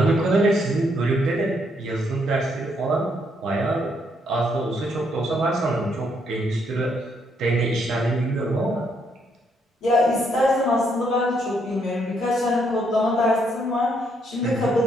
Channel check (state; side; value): normal; both; correlation 0.73